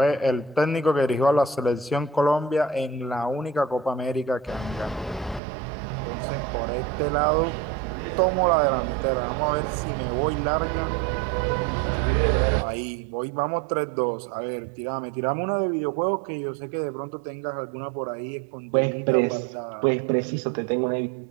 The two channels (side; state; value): left; drops out; at 5.4 s